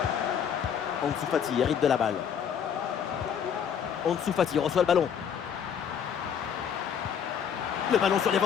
Ansu Fati hérite de la balle. Ansu Fati reçoit le ballon. Le ballon sur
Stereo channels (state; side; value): quieter; right; 8.0 dB